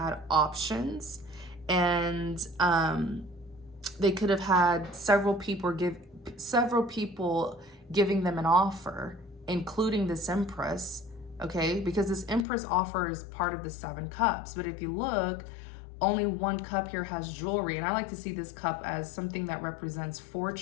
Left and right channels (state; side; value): drops out; right; at 12.5 s